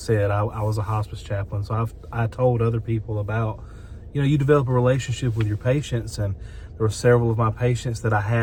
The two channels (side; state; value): both; identical; correlation 1.00